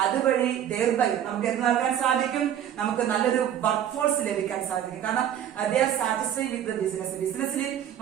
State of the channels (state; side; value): quieter; left; 10.2 dB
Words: അതുവഴി ദയർബൈ നമുക്ക് എന്ത് നൽകാൻ സാധിക്കും? നമുക്ക് നല്ലൊരു വർക്ക് ഫോഴ്സ് ലഭിക്കാൻ സാധിക്കും. കാരണം they are satisfy with the ബിസിനസ്സിൽ